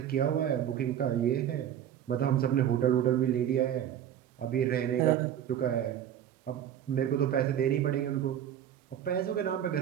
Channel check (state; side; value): quieter; left; 10.2 dB